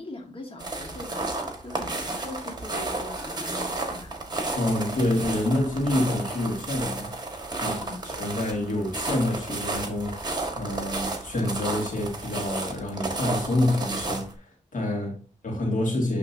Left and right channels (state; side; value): normal; both; correlation 0.68